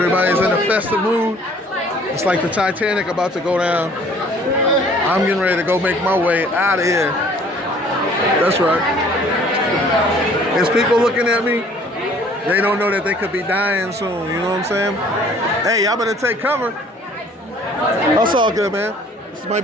in a festive mood. It's like the Titanic about to go down. I'm getting ready to go make my way out of here. That's right. There's people looking at me. They don't know that they could be dying soon. You know what I'm saying? Hey, y'all better take cover. That's all good, man. This might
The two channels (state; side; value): normal; both; correlation 0.55